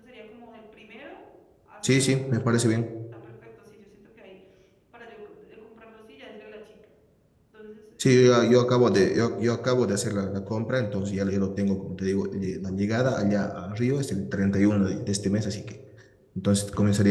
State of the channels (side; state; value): both; identical; correlation 1.00